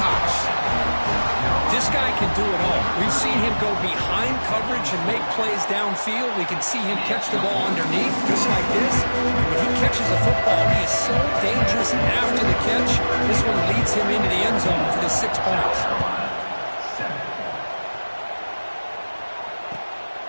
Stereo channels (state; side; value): inverted; both; correlation -1.00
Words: This guy can do it all. We've seen him go behind coverage and make plays downfield. We can see him catch the ball underneath, just like this. When he catches a football, he is so dangerous after the catch. This one leads him into the end zone for the 6 points.